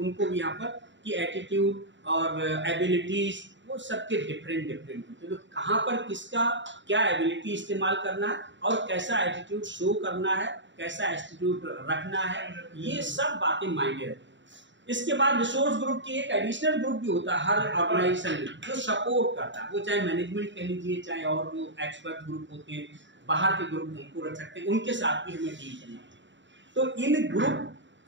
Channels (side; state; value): left; late; 0.54 ms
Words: भी यहाँ पर की एटीट्यूड और एबिलिटीज, वो सबके डिफरेंट होते हैं। तो कहाँ पर किसका क्या एबिलिटी इस्तेमाल करना है और कैसा एटीट्यूड शो करना है, कैसा एटीट्यूड रखना है, ये सब बातें मायने रखती हैं। इसके बाद रिसोर्स ग्रुप की एक एडिशनल ग्रुप भी होता है हर ऑर्गेनाइजेशन में, जो सपोर्ट करता है, वो चाहे मैनेजमेंट कह लीजिए, चाहे और जो एक्सपर्ट ग्रुप होते हैं, बाहर के ग्रुप उनको रख सकते हैं, उनके साथ भी हमें डील करना चाहिए। तो इन ग्रुप